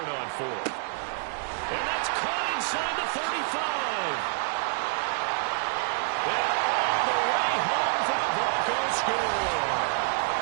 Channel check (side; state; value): left; silent; digital silence